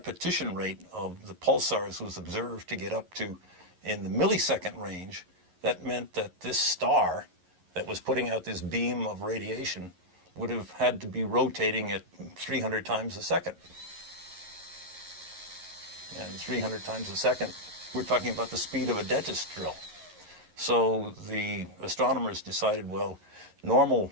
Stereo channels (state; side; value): late; left; 11 ms